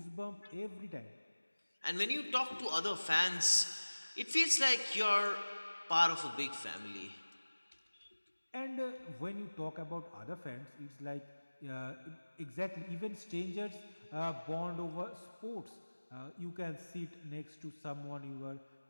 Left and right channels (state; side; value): inverted; both; correlation -1.00